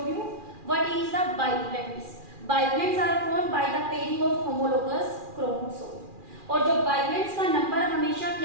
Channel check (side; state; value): left; late; 2.4 ms